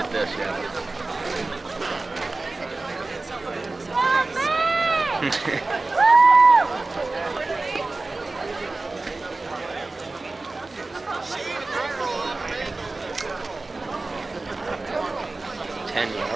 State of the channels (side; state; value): left; quieter; 3.3 dB